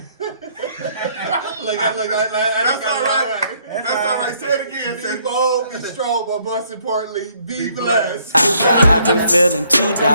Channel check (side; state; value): both; inverted; correlation -0.67